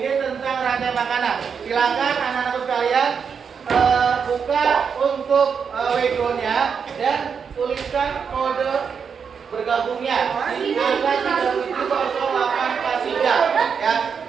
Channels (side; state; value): left; quieter; 6.4 dB